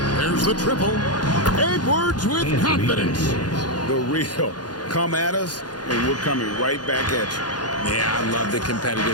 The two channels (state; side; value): late; right; 0.69 ms